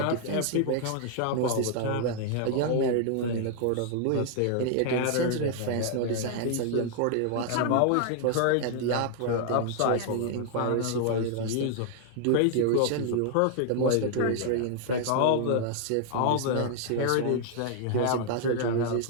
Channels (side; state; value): both; different; correlation 0.00